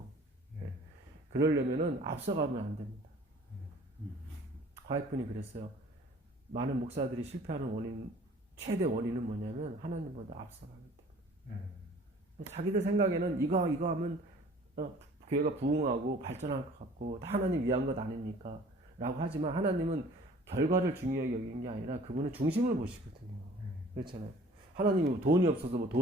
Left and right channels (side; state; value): both; normal; correlation 0.50